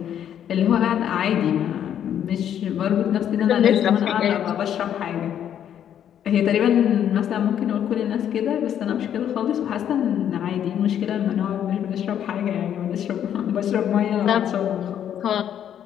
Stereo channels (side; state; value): right; quieter; 9.8 dB